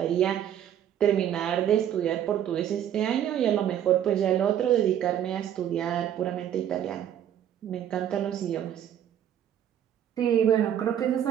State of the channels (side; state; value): left; quieter; 10.3 dB